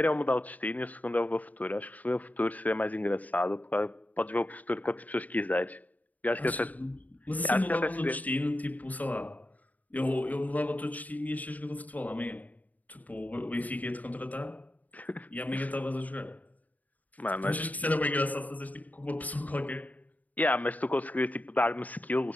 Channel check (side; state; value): right; late; 0.076 ms